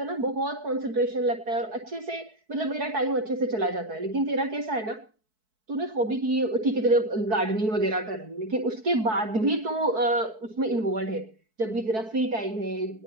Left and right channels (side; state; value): left; late; 4.6 ms